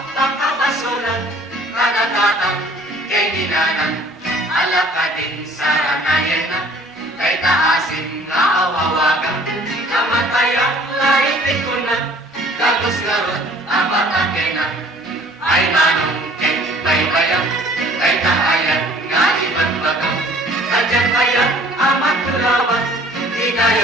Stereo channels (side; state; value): both; normal; correlation 0.53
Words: pagkabasulan, kanatatang kay ninanan, alaka din sa ranayan na, kay taasin nga awawagang, kamatayang laitin ko na, gagos ngarot apat akenan, ay manong kay baybayang, kay kaayat nga ibang bagang, kadyan kayan amat tulawan,